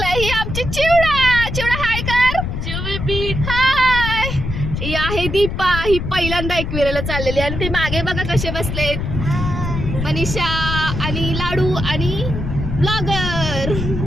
ही आमची चिवडा हाय कर. हाय, ही आहे दीपा. ही पहिल्यांदा एकविरेला चाललेली आणि ते मागे बघा कसे बसलेत, मनीषा आणि लाडू आणि ब्लॉगर.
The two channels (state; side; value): noise; left; rumble, 4 dB below the sound